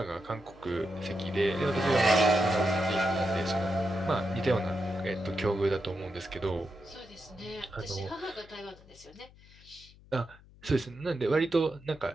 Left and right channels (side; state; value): left; noise; hum, 24 dB below the sound